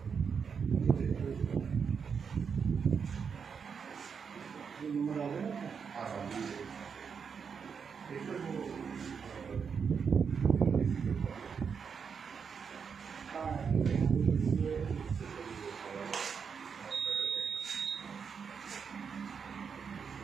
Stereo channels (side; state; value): left; quieter; 6.3 dB